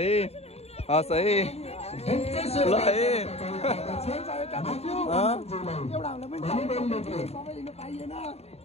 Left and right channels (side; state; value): right; late; 0.30 ms